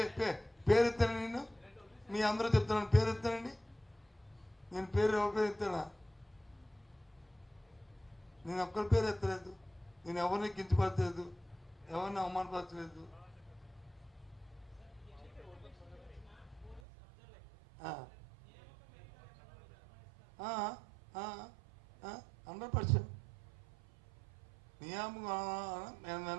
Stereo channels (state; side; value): drops out; left; at 16.8 s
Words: పేరు ఎత్తాను, నేను మీ అందరూ చెప్తున్నాను పేరు ఎత్తానండి. నేను పేరు ఎవరి పేరు ఎత్తానా? నేను ఒక్కరి పేరు ఎత్తలేదు. నేను ఎవరిని కించపరచలేదు, ఎవరిని అవమానపరచలేదు. ఆ 100% నియామకం